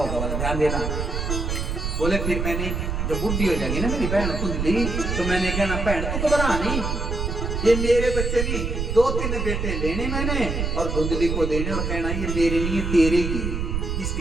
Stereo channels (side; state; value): right; noise; rumble, 2 dB below the sound